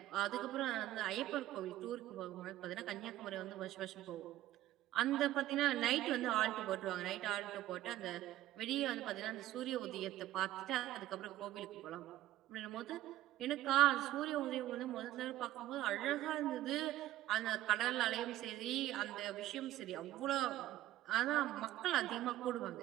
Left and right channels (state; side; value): quieter; left; 14.5 dB